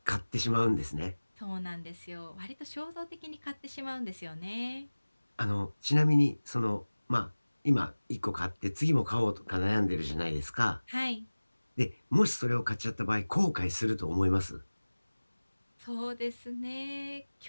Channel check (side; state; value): both; inverted; correlation -1.00